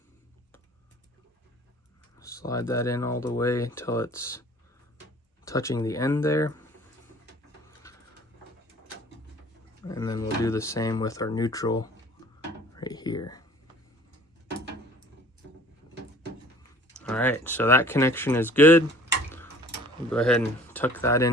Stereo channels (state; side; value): normal; both; correlation 0.50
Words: Slide that in all the way until it's touching the end there. And then we'll do the same with our neutral right here. All right, so that connection is good. We'll go ahead and tuck that